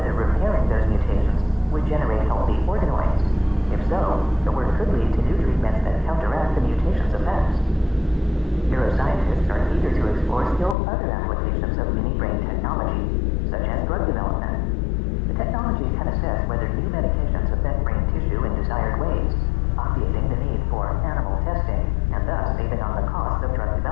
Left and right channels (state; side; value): drops out; right; at 10.8 s